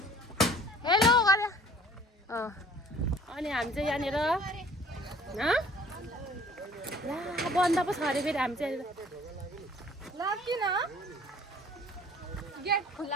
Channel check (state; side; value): normal; both; correlation 0.52